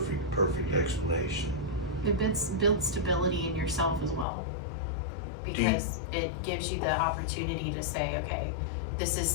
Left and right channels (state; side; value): drops out; right; at 4.2 s